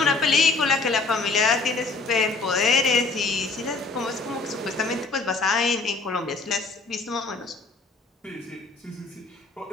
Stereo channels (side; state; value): right; quieter; 3.8 dB